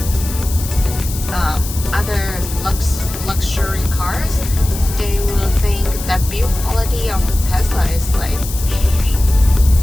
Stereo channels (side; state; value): left; noise; hiss, 10 dB below the sound